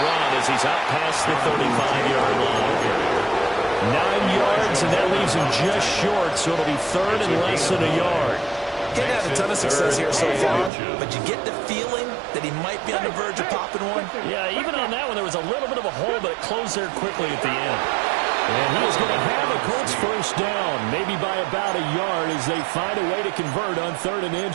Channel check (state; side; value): drops out; left; at 10.7 s